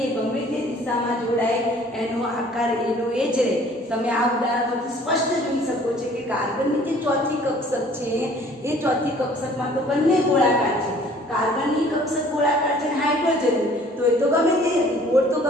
એ ગમે તે દિશામાં જોડાય એનો આકાર એનો એ જ રહે. તમે આ ઉદાહરણ પરથી સ્પષ્ટ જોઈ શકો છો કે કાર્બનની જે ચોથી કક્ષક છે એ ચોથી કક્ષકમાં તો બંને ગોળાકાર છે. કાર્બનની કક્ષક ગોળાકાર છે, હાઇડ્રોજન તો એ તો ગમે તે ગોળ તો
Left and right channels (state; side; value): normal; both; correlation 0.54